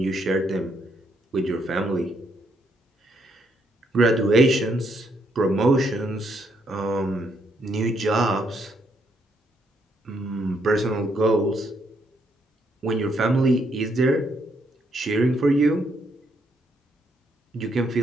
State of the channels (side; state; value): both; normal; correlation 0.74